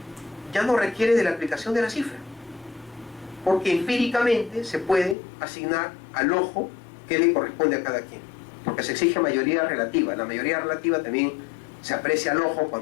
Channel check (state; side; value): drops out; right; at 5.2 s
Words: ya no requiere de la aplicación de la cifra, porque empíricamente se puede asignar al ojo que le corresponde a cada quien, porque se exige mayoría relativa. La mayoría relativa también se aprecia al ojo